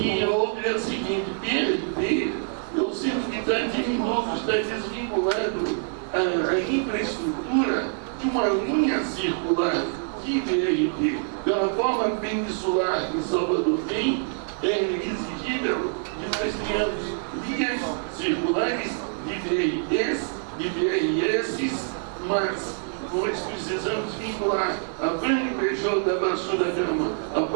outra é a seguinte: BRT, eu sinto que está diminuto, está desvinculado a infraestrutura de uma linha circular de BRT. Pela forma peninsular que Salvador tem, é exigível que nós tenhamos linhas circulares de BRTs, de BRS, mas nós precisamos vincular a Franco Peixoto da Baixo da Gama, a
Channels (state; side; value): silent; left; 60 dB below the other